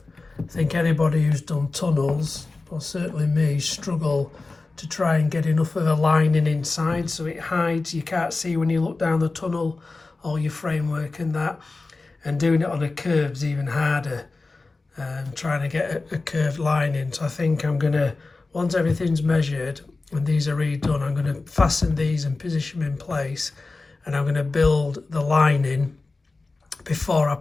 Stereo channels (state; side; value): quieter; right; 3.6 dB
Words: I think anybody who's done tunnels, or certainly me, struggle to try and get enough of a lining inside so it hides, you can't see when you look down the tunnel, all your framework and that. And doing it on a curve's even harder, trying to get a curved line in. So I think I'm gonna, once everything's measured and these are redone, I'm gonna fasten these and position them in place, and I'm gonna build the lining before I